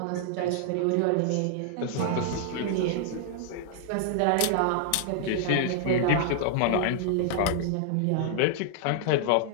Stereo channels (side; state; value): both; different; correlation -0.01